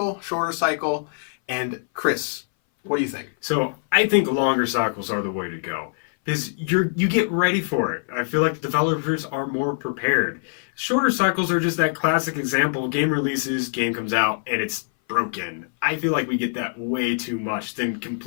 shorter cycle? And Chris, what do you think? So I think longer cycles are the way to go. Because you get ready for it. I feel like the developers are more prepared. Shorter cycles are just that classic example. Game releases, game comes out, and it's broken. I feel like we get that way too much than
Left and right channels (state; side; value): silent; right; 59 dB below the other